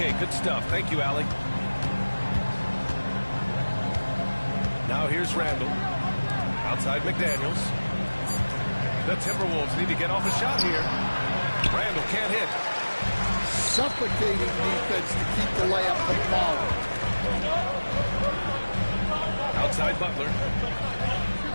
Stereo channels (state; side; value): inverted; both; correlation -1.00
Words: good stuff. Thank you, Allie. Now here's Randall. Outside McDaniels. The Timberwolves need to get off a shot here. Randall can't hit. Suffocating defense to keep the layup from falling. Outside Butler.